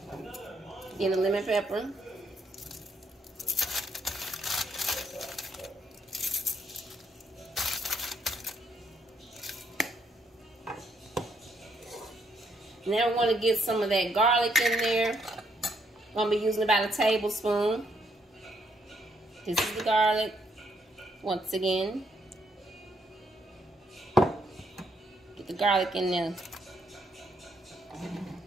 and the lemon pepper. Now we want to get some of that garlic in there. I'm going to be using about a tablespoon. This is the garlic. Once again, get the garlic in there.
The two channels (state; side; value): normal; both; correlation 0.73